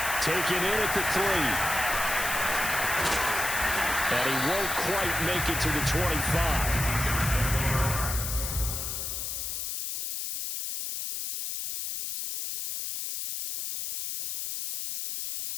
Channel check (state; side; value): noise; left; hiss, 4 dB below the sound